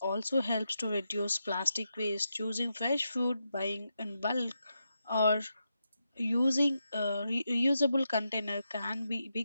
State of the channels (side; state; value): both; inverted; correlation -0.85